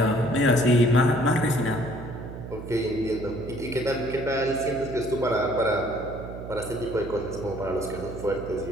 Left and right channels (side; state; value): right; noise; hum, 10 dB below the sound